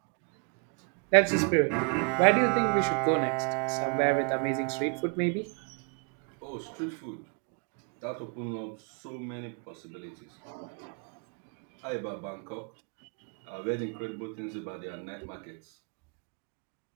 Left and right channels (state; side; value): quieter; left; 34.6 dB